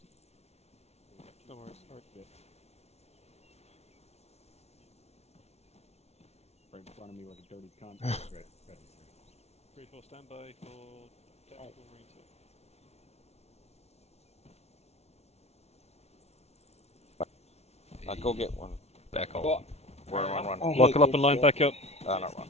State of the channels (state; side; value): late; right; 0.31 ms